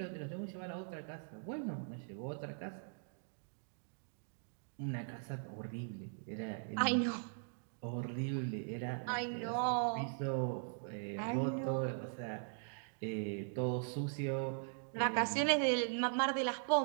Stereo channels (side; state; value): left; silent; digital silence